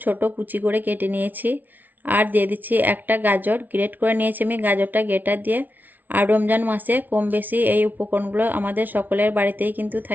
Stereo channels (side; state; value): left; late; 0.082 ms